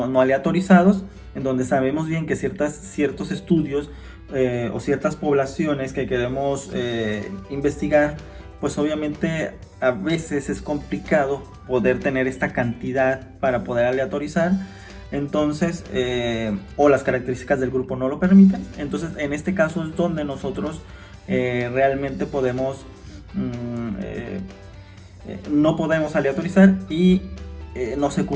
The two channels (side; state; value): both; identical; correlation 1.00